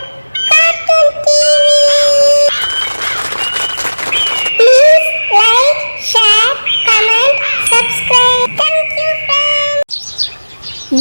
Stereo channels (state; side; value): inverted; both; correlation -1.00